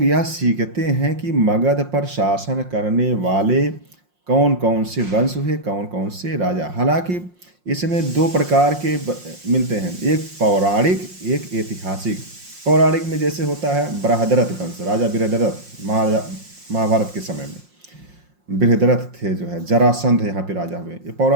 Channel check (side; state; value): left; late; 5.6 ms